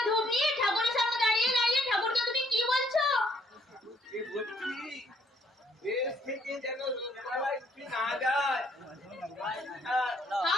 ধূপ নিয়ে ঠাকুরের সামনে দাঁড়িয়ে দাঁড়িয়ে ঠাকুরকে তুমি কি বলছো? কি বলছি, দেশ থেকে যেন রোগবালাই না যায়।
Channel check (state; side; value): normal; both; correlation 0.67